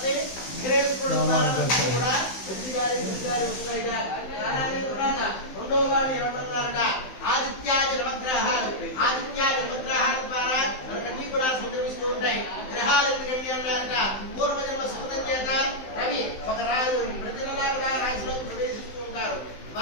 విఘ్నేశ్వరుడు ద్వారా కూడా మంచి గారి చెడు గారి వస్తాయిట. రెండవ వాడిని ఎవరన్నారట? ఆదిత్యాది నవగ్రహాలు. ఆదిత్యాది నవగ్రహాల ద్వారా మనకన్నీ కూడా సంక్రమిస్తూ ఉంటాయి. గ్రహాలు ఎందుకండి అన్నారట? పూర్వజన్మ సుకృతం చేత రవి ఒక రాజు ప్రతి నెలా కూడా రాశిలో ప్రవేశిస్తూ ఉంటారు.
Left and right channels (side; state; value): right; late; 15 ms